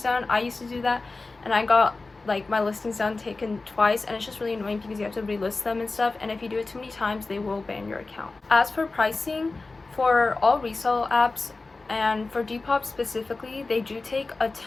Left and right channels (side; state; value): right; quieter; 3.6 dB